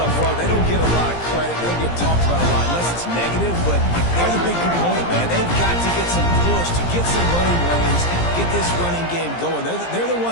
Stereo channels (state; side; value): late; right; 17 ms